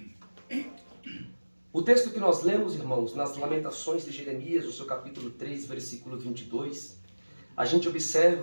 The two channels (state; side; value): inverted; both; correlation -1.00